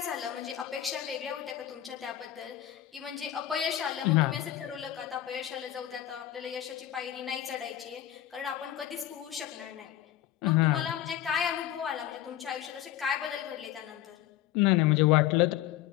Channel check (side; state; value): right; quieter; 12.5 dB